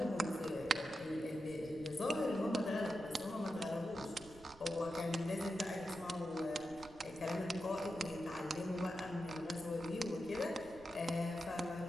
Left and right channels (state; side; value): noise; right; rumble, 20 dB below the sound